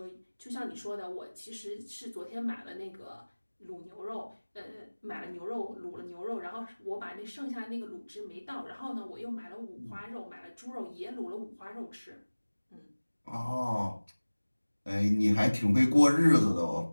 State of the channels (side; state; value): both; inverted; correlation -1.00